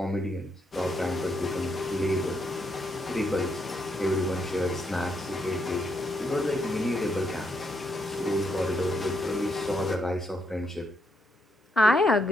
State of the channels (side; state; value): both; normal; correlation 0.77